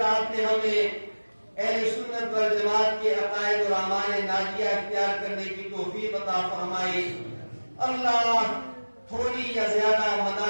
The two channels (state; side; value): inverted; both; correlation -1.00